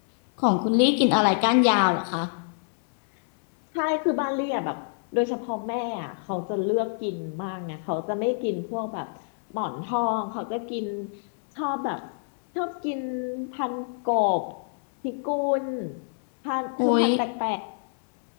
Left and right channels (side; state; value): right; silent; digital silence